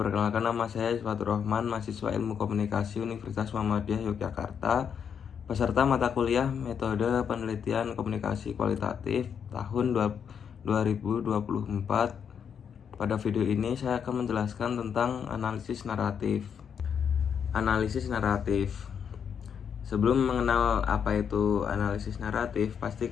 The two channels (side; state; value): right; quieter; 7.5 dB